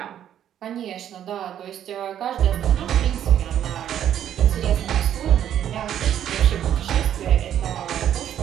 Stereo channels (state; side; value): quieter; left; 10.3 dB